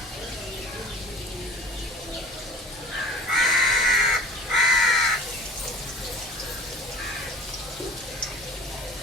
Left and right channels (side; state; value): both; normal; correlation 0.45